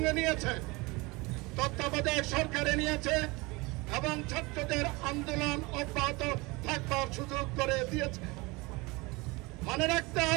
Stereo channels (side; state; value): left; quieter; 24.4 dB